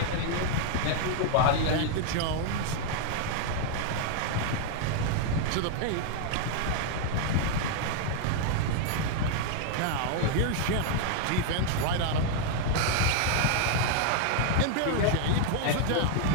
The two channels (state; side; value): different; both; correlation 0.00